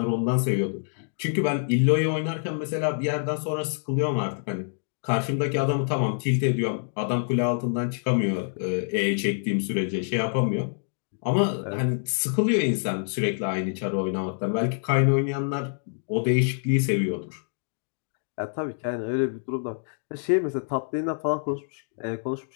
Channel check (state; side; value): silent; right; digital silence